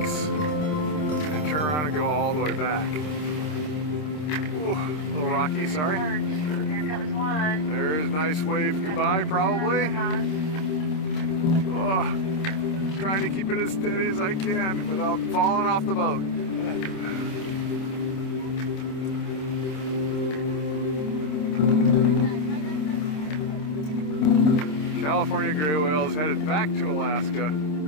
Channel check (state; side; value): late; right; 26 ms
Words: and turn around and go all the way back. Ooh, a little rocky, sorry. Here comes one. There's a nice wave goodbye, probably. Oh. Trying to keep it as steady as I can without falling off the boat. California gray whale is headed back to Alaska.